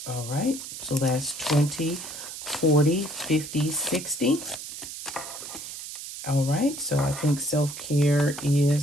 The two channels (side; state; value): right; noise; hiss, 10 dB below the sound